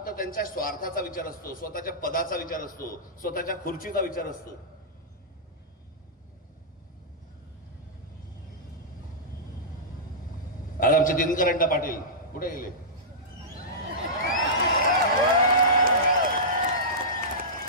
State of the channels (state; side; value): normal; both; correlation -0.15